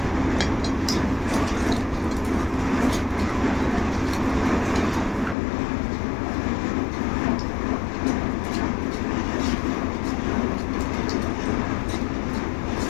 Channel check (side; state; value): right; drops out; at 5.4 s